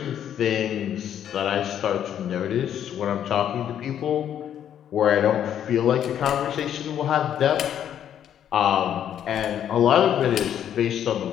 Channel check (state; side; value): quieter; right; 9.8 dB